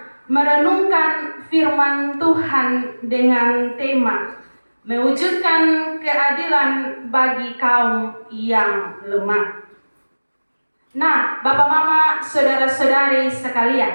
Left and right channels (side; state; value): both; inverted; correlation -1.00